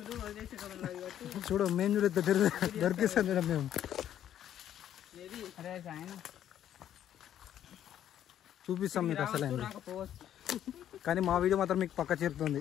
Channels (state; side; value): quieter; right; 10.8 dB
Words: చూడు మేము చూడ దొరికిస్తాం మేడం మేము. చూపిస్తాం మీకు అసలు, కానీ మా వీడియో మాత్రం మీకు పక్క చేరుతుంది.